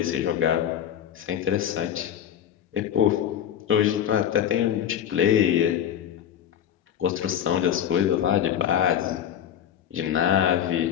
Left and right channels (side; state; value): right; quieter; 9.8 dB